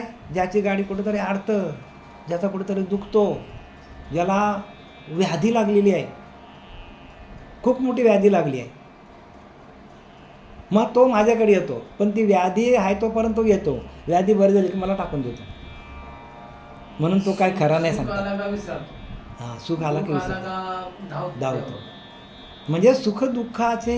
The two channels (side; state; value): both; identical; correlation 1.00